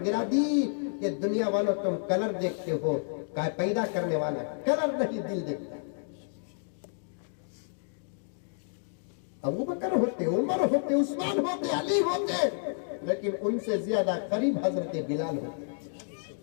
गिरा दी कि दुनिया वालों तुम कलर देखते हो, पैदा करने वाला कलर नहीं दिल देखता। अबू बकर होते, उमर होते, उस्मान होते, अली होते, लेकिन उनसे ज्यादा करीब हजरत बिलाल होते।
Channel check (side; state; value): right; silent; digital silence